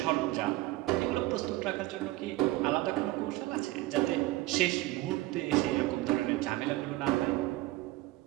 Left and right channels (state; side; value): quieter; left; 18.3 dB